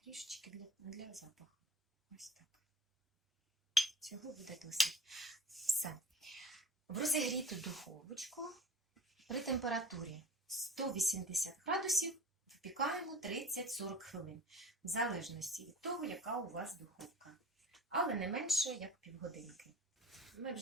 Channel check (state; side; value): normal; both; correlation 0.41